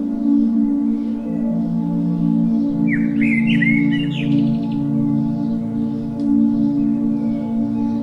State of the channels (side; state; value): both; identical; correlation 1.00